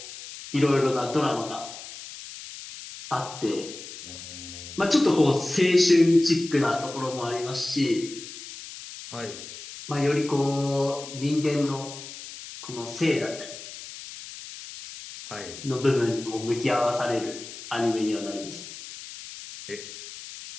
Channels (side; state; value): left; noise; hiss, 13 dB below the sound